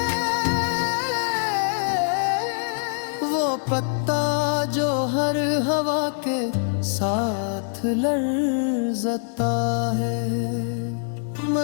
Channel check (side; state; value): right; silent; 63 dB below the other